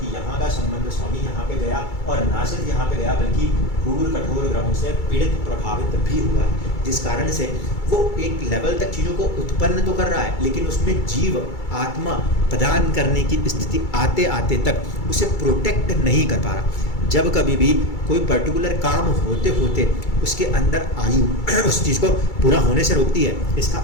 यहाँ का संबंध स्वामी यहाँ पे गया और ना सिर्फ यहाँ पे गया बल्कि क्रूर कठोर ग्रहों से पीड़ित प्रभावित भी हुआ है, जिस कारण से वो एक लेवल तक चीज़ों को उत्पन्न तो कर रहा है लेकिन उसमें जीव आत्मा प्रदान करने की स्थिति आते आते तक उसे प्रोटेक्ट नहीं कर पा रहा। जब कभी भी कोई पर्टिकुलर काम होते होते उसके अंदर आयु उस चीज़ को पूरा होने से रोकती है, इसका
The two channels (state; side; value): late; right; 2.3 ms